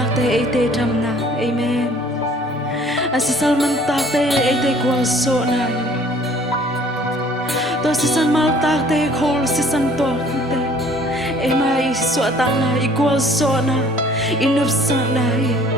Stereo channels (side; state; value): both; normal; correlation 0.55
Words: te e te tham na amen asisal man tak te e te kwal so na to asisan mal tak te khol asisan to te e mai so ta na equal so na inup sa na